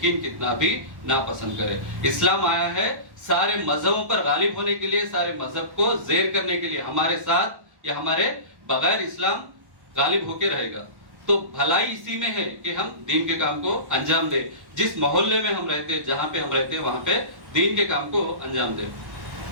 کتنا بھی ناپسند کرے. اسلام آیا ہے سارے مذہبوں پر غالب ہونے کے لیے, سارے مذہب کو زیر کرنے کے لیے. ہمارے ساتھ یا ہمارے بغیر اسلام غالب ہو کے رہے گا. تو بھلائی اسی میں ہے کہ ہم دین کے کام کو انجام دیں. جس محلے میں ہم رہتے, جہاں پہ ہم رہتے, وہاں پہ دین کے کام کو انجام دیں.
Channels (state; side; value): late; left; 1.1 ms